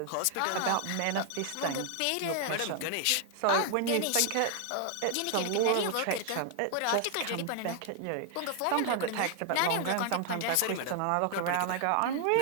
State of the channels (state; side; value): different; both; correlation 0.00